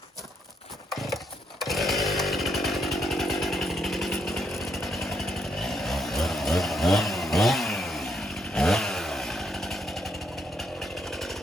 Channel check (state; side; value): normal; both; correlation 0.76